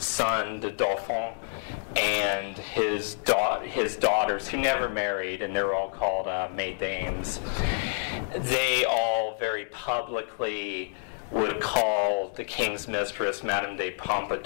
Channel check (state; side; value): silent; right; digital silence